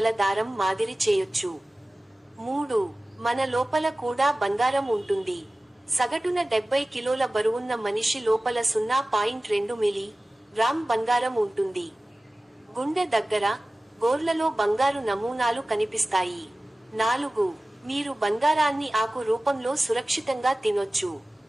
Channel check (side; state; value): both; normal; correlation 0.97